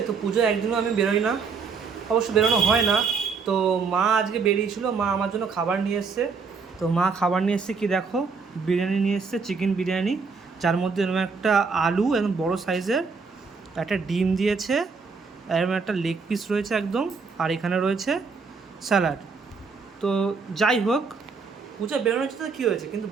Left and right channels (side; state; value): left; quieter; 5.0 dB